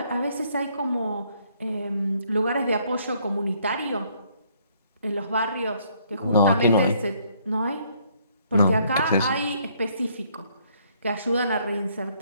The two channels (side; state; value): both; inverted; correlation -0.67